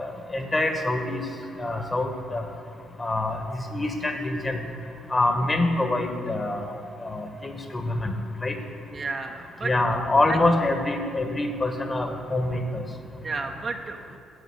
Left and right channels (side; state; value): both; normal; correlation 0.87